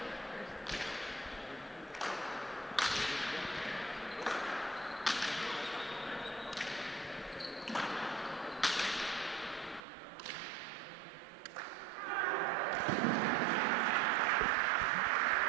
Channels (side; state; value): left; drops out; at 9.8 s